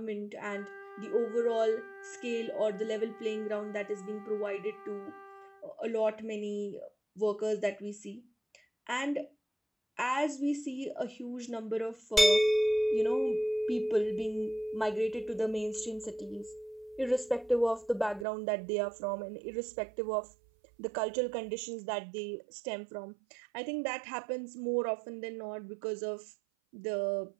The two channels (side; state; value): left; drops out; at 18.2 s